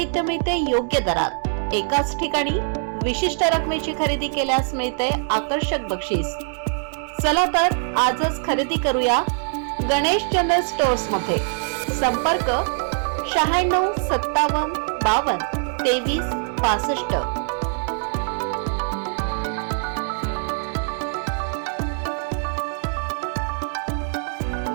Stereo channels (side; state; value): left; silent; 63 dB below the other